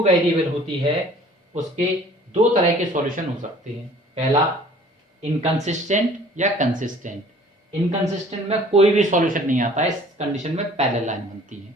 variable होती है, उसके दो तरह के सॉल्यूशन हो सकते हैं। पहला इनकंसिस्टेंट या कंसिस्टेंट। इनकंसिस्टेंट में कोई भी सॉल्यूशन नहीं आता है, इस कंडीशन में पैरेलल लाइन बनती है।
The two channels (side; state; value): both; normal; correlation 0.52